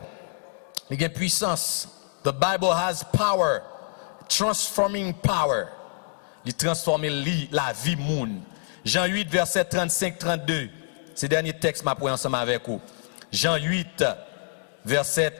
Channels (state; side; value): silent; right; 60 dB below the other